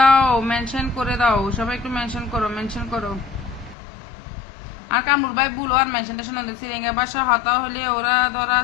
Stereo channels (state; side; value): drops out; right; at 3.8 s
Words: মেনশন করে দাও, সবাই একটু মেনশন করো, মেনশন করো। আর কামরুল ভাই বলো আর মেনশন টেনশন সিরিঙ্গের ভাষা হতা হলে ওরা ধরা